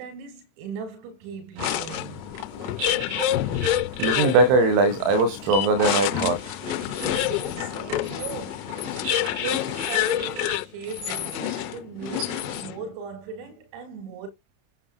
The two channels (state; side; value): late; left; 31 ms